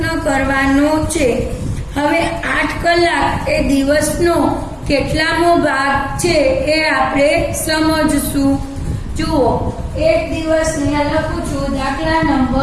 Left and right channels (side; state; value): both; identical; correlation 1.00